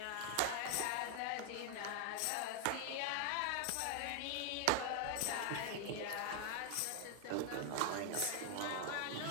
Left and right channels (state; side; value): different; both; correlation 0.00